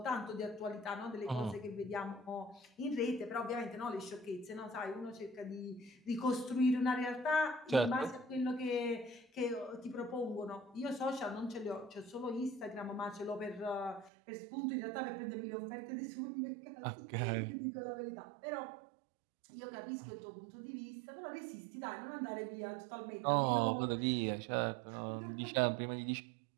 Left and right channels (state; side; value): drops out; left; at 14.1 s